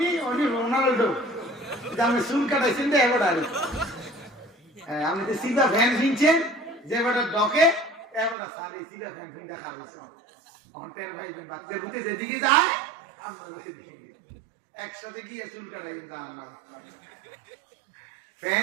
উনি রোনাল্ডো, আমি চুল কাটাইছেন তো এবার, আমি তো সিধা ফ্যান কিনছেন যে বেটা ডকে, এবার সারি সিধা ফ্যান কিনতে খাওয়াইছ অন্টের ভাই বাচ্চা বুঝতে যেদিকে যায় আমরা একসাথে গিয়ে চুল কাটাই যান না,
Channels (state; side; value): drops out; left; at 8.3 s